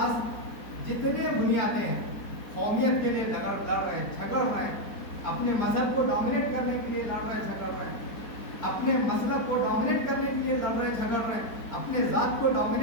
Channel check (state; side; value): late; right; 4.4 ms